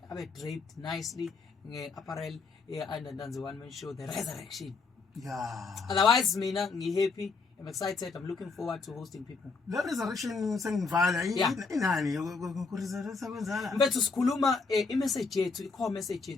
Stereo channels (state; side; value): quieter; right; 4.5 dB